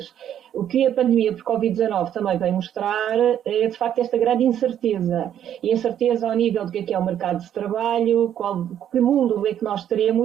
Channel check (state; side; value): quieter; left; 10.2 dB